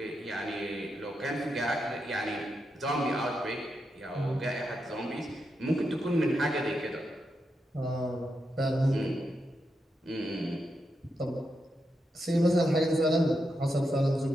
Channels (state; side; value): normal; both; correlation 0.85